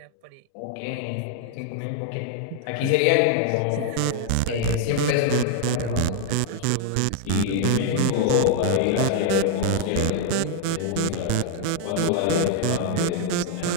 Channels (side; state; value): both; different; correlation 0.00